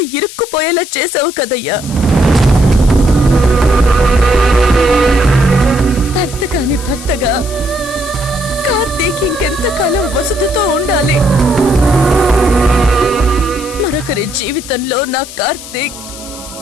ఇరుక్కుపోయేలా చేసావు కదయ్యా. భర్త కాని భర్తగా కార్తీక్ ఇంకెంతకాలం వసుధతో ఉండాలి? మరొకరి జీవితంలో నా కార్తీక్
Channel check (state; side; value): noise; left; hiss, 14 dB below the sound